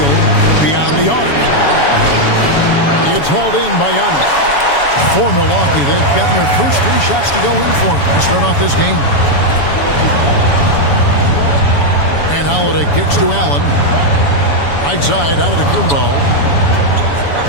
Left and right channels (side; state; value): right; late; 7.1 ms